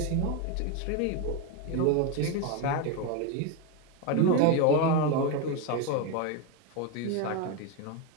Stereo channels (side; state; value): both; different; correlation 0.02